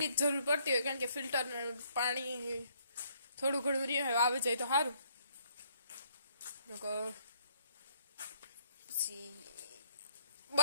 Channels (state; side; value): inverted; both; correlation -0.67